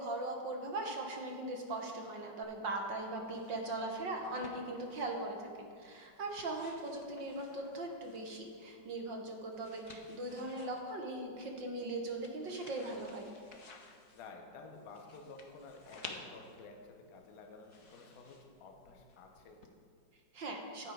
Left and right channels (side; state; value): left; late; 5.6 ms